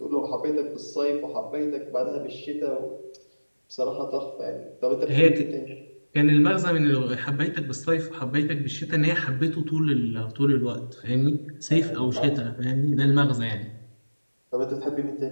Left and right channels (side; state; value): both; inverted; correlation -1.00